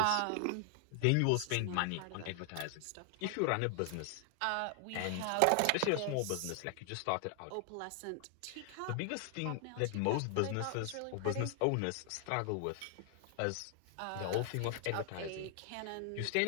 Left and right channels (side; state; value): both; different; correlation 0.00